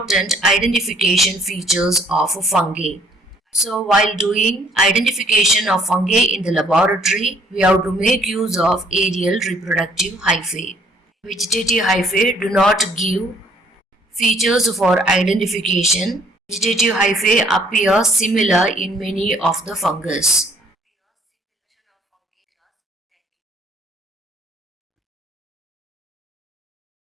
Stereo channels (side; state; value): both; normal; correlation 0.62